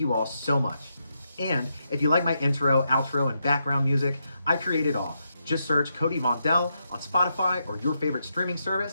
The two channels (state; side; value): inverted; both; correlation -0.82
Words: you all so much. And if you like my intro, outro, and background music, I create it all. Just search Cody Vondell on Spotify or your favorite streaming